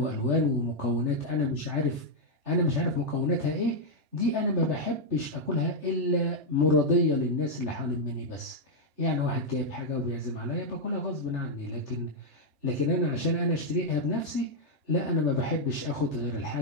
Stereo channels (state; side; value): late; left; 3.4 ms